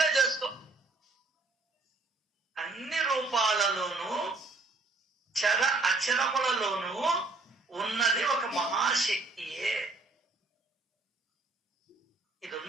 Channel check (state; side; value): quieter; left; 3.6 dB